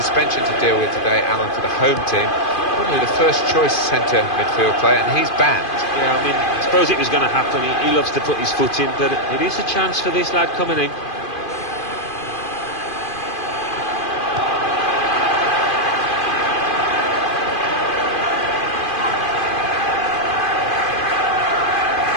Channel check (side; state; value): right; late; 2.5 ms